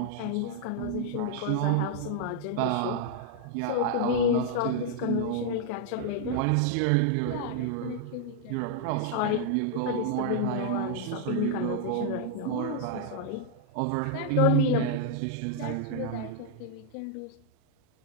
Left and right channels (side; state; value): both; different; correlation -0.01